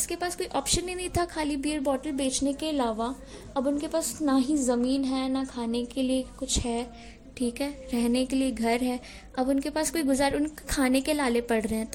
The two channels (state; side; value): identical; both; correlation 1.00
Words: के पास कोई ऑप्शन ही नहीं था खाली बियर बॉटल बेचने के अलावा। अब उनके पास ना ही ज़मीन है, ना खाने के लिए कुछ है, ठीक है, रहने के लिए घर है। अब उनके पास कोई उनके खाने के लाले पड़ रहे हैं,